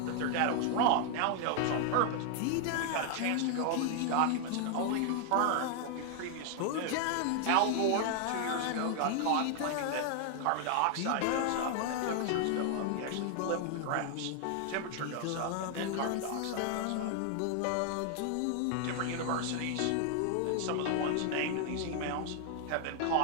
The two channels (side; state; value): both; different; correlation 0.00